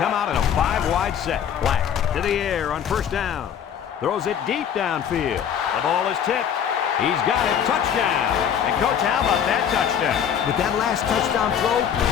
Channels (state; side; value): quieter; right; 8.6 dB